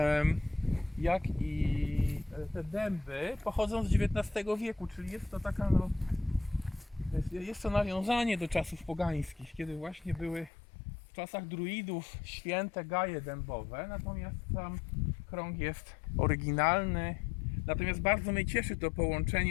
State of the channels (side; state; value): right; drops out; at 10.5 s